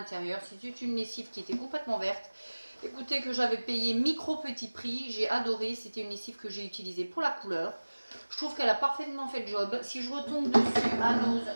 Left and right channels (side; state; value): both; inverted; correlation -1.00